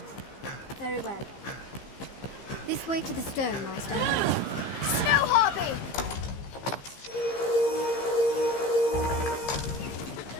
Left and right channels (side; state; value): right; late; 15 ms